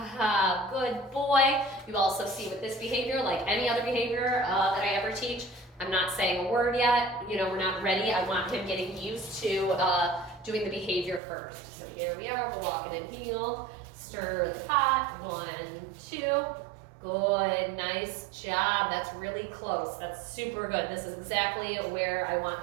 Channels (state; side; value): drops out; left; at 11.2 s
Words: Good boy. You also see with this behavior, like any other behavior that I ever teach, I'm not saying a word yet. You know, we're not ready. I want him getting used to doing the behavior first. So here we are. We're walking in heel. Stir the pot. 1, 2. Good. Nice job. That's really close. That's super good. This is exactly where I want